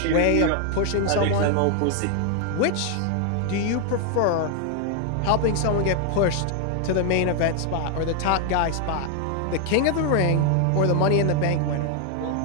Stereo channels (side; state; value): both; different; correlation 0.00